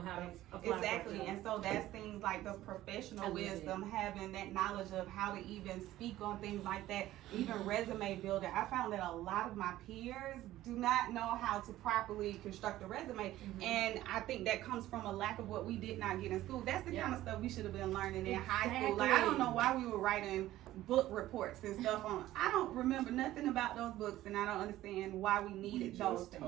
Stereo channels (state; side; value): quieter; left; 14.9 dB